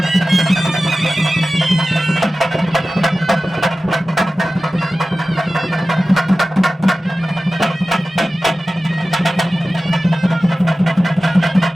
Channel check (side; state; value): both; normal; correlation 0.95